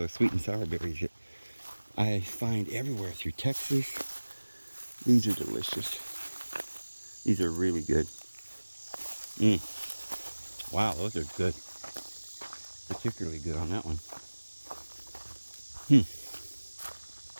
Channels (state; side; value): inverted; both; correlation -1.00